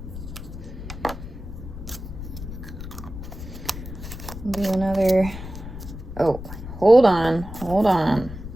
Do another, oh, hold on.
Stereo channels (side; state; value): left; noise; rumble, 10 dB below the sound